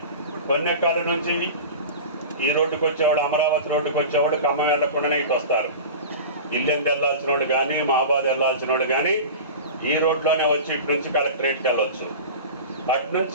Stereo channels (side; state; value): both; inverted; correlation -0.32